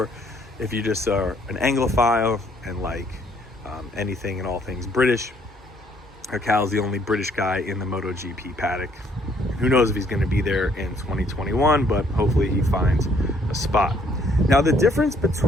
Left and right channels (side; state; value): both; normal; correlation 0.65